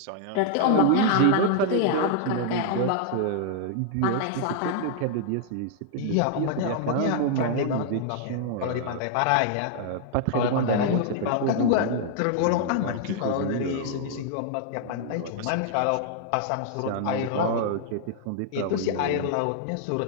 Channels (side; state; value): both; different; correlation -0.01